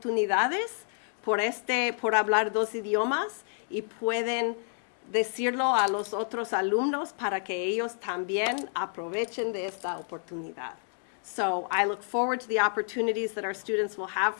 por hablar dos idiomas y pueden decirlo a los otros alumnos para que ellos también aprovechen de esta oportunidad. So I look forward to the opportunities that our students will have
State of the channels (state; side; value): silent; right; 58 dB below the other